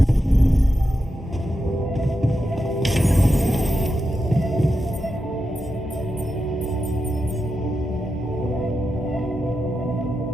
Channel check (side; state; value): both; normal; correlation 0.88